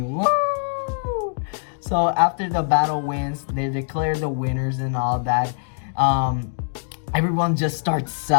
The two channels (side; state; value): right; silent; digital silence